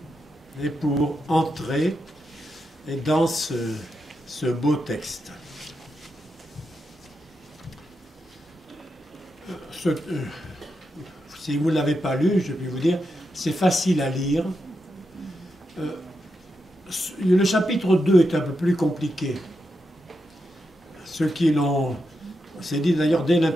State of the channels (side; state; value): both; normal; correlation 0.86